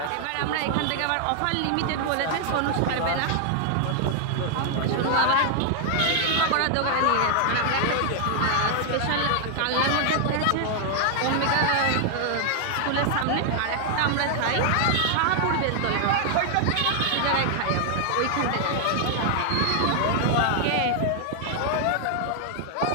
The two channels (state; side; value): different; both; correlation 0.00